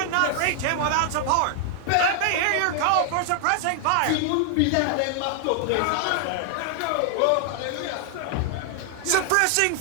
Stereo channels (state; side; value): different; both; correlation 0.00